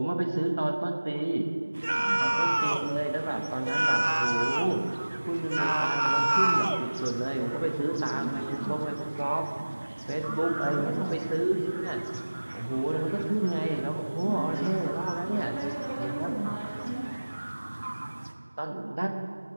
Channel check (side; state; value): both; inverted; correlation -1.00